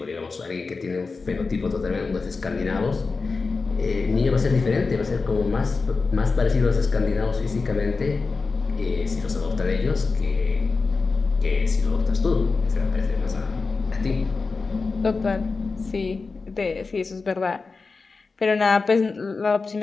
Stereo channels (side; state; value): right; quieter; 4.2 dB